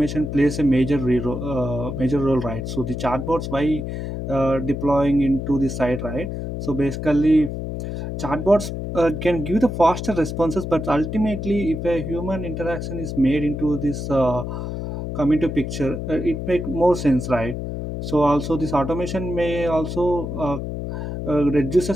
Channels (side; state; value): left; noise; hum, 5 dB below the sound